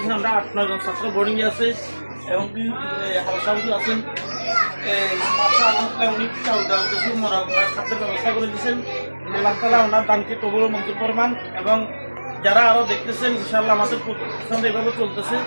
আমরা 8-9 জন ছাত্র বোর্ডিংয়ে আছে এবং হাউস আছেন। আলহামদুলিল্লাহ উনি চাউল ডাউল কিছু মরা খাদ্যের ব্যবস্থা করে দিয়েছেন। আল্লাহ তাআলা ওনার দানকে কবুল ও মঞ্জুর ফরমান। এবং যারা আরও দেখতেছেন ইনশাআল্লাহ আমাদের প্রতিষ্ঠান এভাবে চলতেছে,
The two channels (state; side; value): inverted; both; correlation -1.00